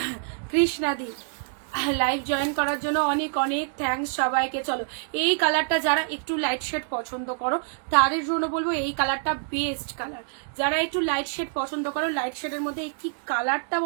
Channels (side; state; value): left; silent; digital silence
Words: কৃষ্ণাদি লাইভ জয়েন করার জন্য অনেক অনেক থ্যাঙ্কস সবাইকে। চলো এই কালারটা যারা একটু লাইট শেড পছন্দ করো তাদের জন্য বলবো এই কালারটা বেস্ট কালার। যারা একটু লাইট শেড পছন্দ করো, লাইট শেডের মধ্যে কি কালারটা